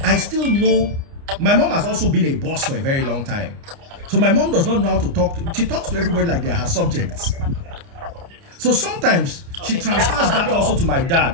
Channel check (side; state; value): left; late; 29 ms